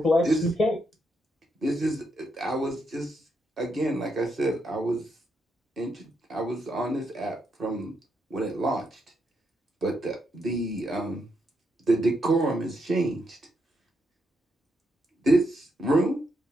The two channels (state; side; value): normal; both; correlation 0.80